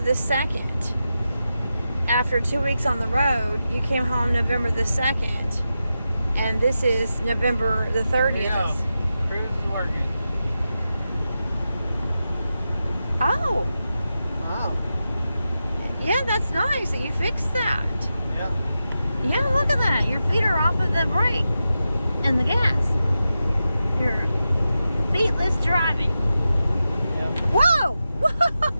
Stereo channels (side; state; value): both; inverted; correlation -0.90